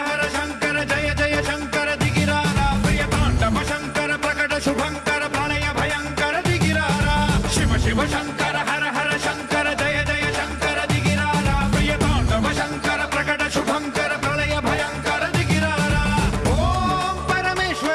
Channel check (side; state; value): both; identical; correlation 1.00